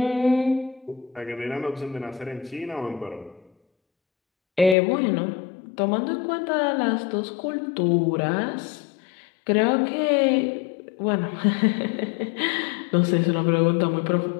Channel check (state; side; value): drops out; right; at 4.8 s